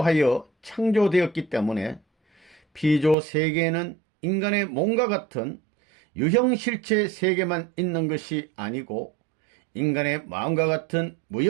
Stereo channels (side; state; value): left; drops out; at 3.2 s